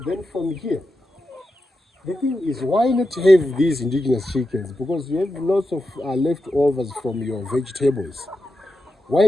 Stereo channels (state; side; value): normal; both; correlation 0.89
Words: then from here, The thing is, why not have these indigenous chickens? Because you have lots of leftovers from your vegetables. Why